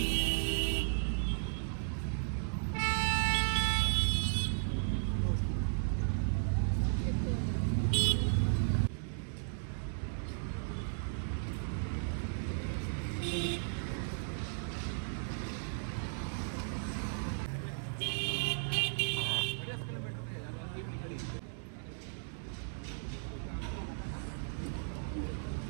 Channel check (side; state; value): left; silent; 54 dB below the other